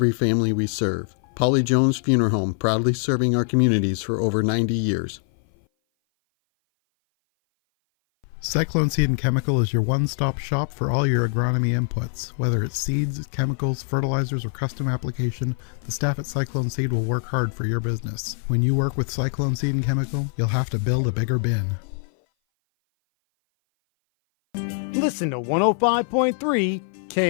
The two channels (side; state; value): right; silent; 57 dB below the other